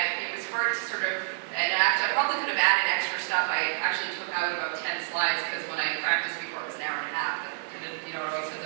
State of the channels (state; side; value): silent; left; digital silence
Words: it was hard to sort of, and actually, I probably could have added extra stuff. I actually took out about 10 slides because when I practiced before, it was an hour and a half. It always says